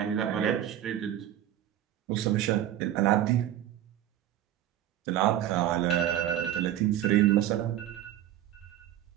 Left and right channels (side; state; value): left; quieter; 12.1 dB